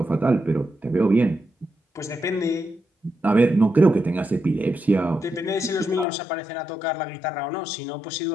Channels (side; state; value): right; drops out; at 6.1 s